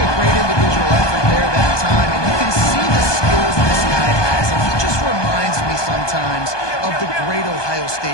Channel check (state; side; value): late; right; 1.2 ms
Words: great individual effort there that time, and you can see the skills this guy has, and he just reminds me sometimes of the great Ohio